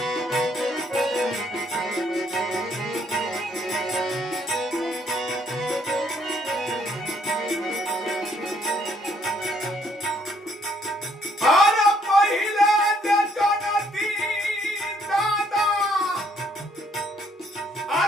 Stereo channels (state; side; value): normal; both; correlation 0.67